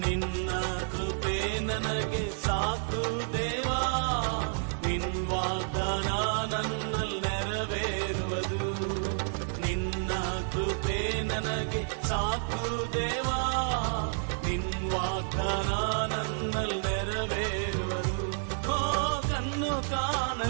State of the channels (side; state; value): left; silent; digital silence